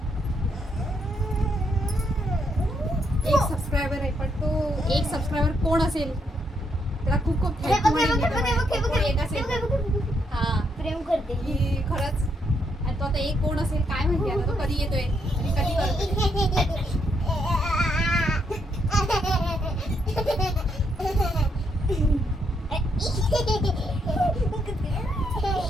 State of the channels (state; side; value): normal; both; correlation 0.76